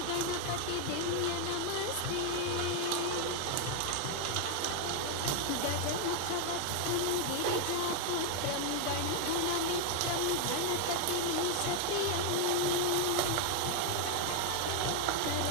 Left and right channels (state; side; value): different; both; correlation 0.00